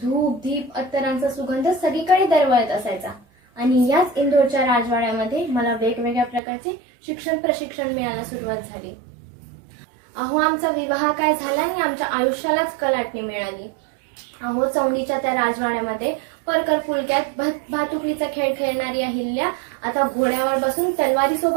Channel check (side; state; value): left; drops out; at 6.4 s